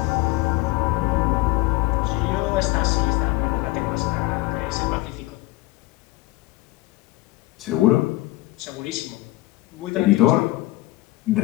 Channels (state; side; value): quieter; right; 18.9 dB